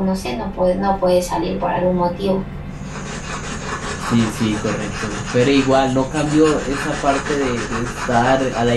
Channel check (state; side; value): identical; both; correlation 1.00